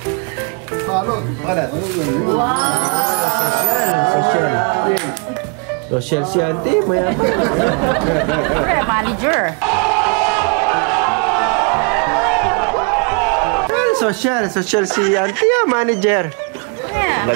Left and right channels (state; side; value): quieter; left; 36.4 dB